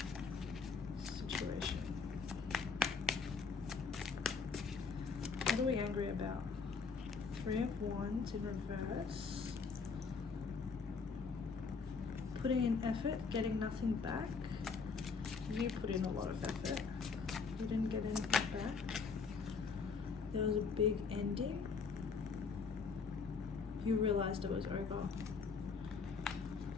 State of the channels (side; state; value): right; quieter; 5.2 dB